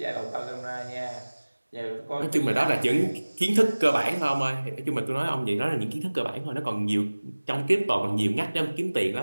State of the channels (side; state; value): both; inverted; correlation -1.00